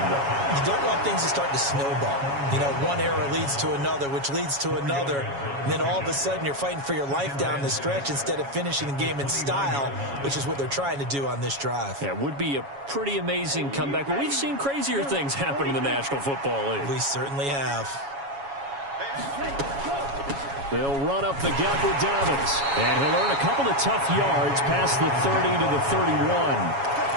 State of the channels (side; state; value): left; late; 7.2 ms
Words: though. You don't want things to start to snowball. You know, one error leads to another, which leads to another. And then all of a sudden you're fighting for your life down the stretch instead of finishing the game in style, which is what they're trying to do on this drive. Yeah, it would be a pretty amazing comeback, but we've seen crazier things happen in the National Football League. We certainly have. They'll run up the gut with Dobbins. And he'll earn a couple of tough yards past the 30 to the 31.